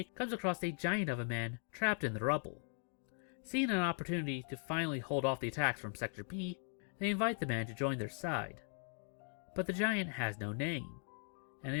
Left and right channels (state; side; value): silent; right; 51 dB below the other